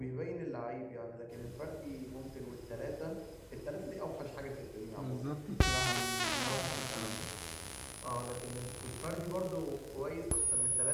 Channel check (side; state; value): both; identical; correlation 1.00